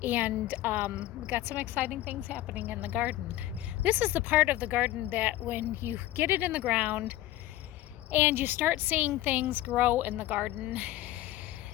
and we got some exciting things happening in the garden. This is the part of the garden that when you get it in the ground and you start seeing things grow in the garden,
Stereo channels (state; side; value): quieter; right; 15.1 dB